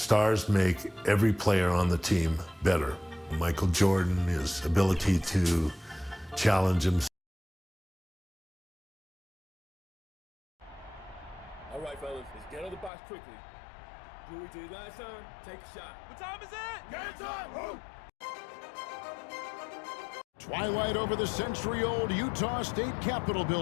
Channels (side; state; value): right; drops out; at 12.9 s